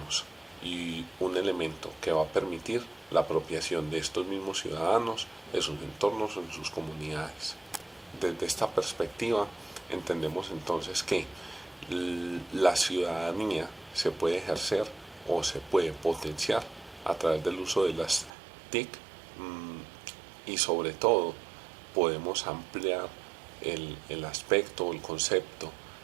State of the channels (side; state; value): left; drops out; at 18.3 s